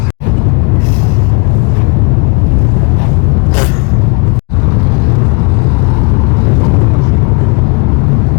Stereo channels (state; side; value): quieter; right; 30.4 dB